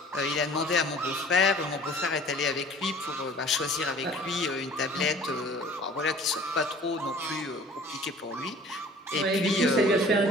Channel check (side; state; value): both; normal; correlation 0.48